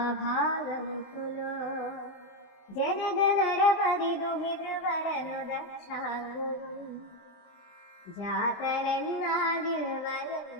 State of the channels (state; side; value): late; right; 20 ms